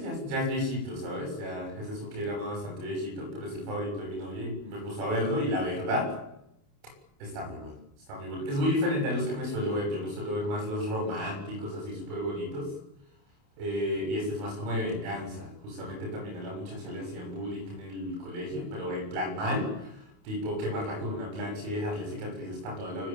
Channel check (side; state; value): left; late; 29 ms